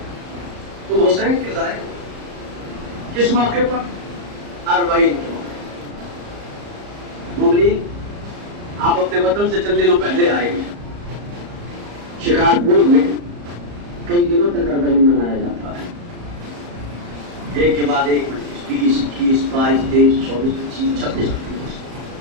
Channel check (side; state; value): left; late; 34 ms